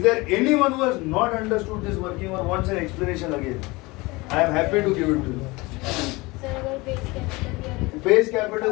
there anyone who has not understood this working or wants an explanation again? I am happy to give it to you. Sir अगर base capital दिया base capital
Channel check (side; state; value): right; quieter; 23.3 dB